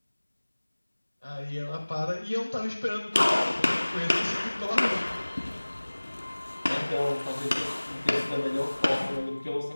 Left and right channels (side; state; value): both; inverted; correlation -1.00